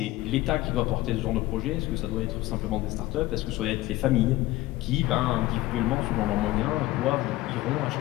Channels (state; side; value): quieter; right; 17.4 dB